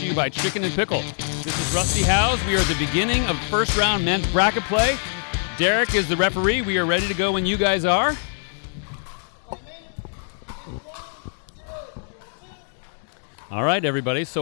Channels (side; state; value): right; silent; digital silence